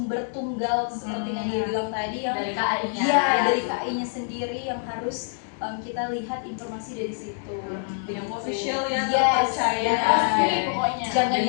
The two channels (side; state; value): right; silent; digital silence